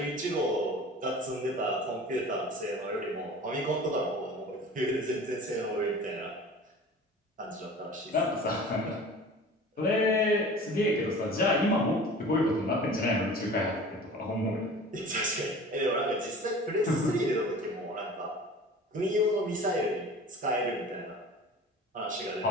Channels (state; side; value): normal; both; correlation 0.41